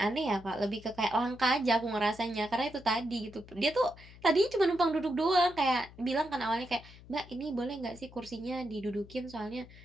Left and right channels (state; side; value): noise; left; hum, 20 dB below the sound